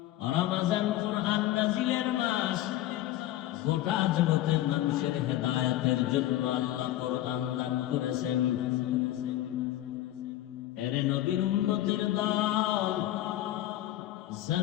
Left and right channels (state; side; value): quieter; right; 14.3 dB